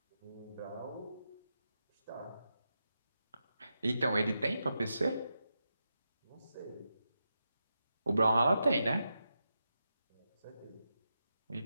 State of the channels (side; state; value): both; inverted; correlation -0.87